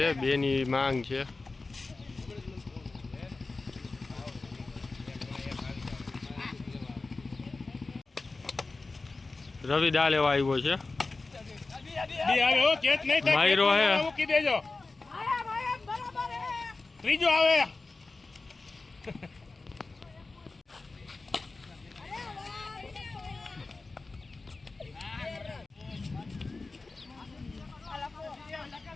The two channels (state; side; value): quieter; right; 3.6 dB